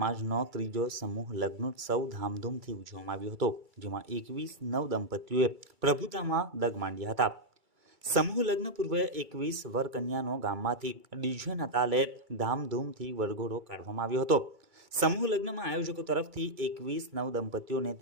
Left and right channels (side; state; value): left; late; 2.3 ms